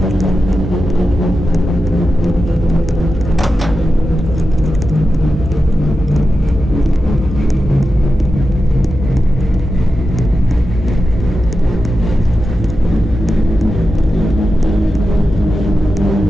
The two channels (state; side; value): normal; both; correlation 0.91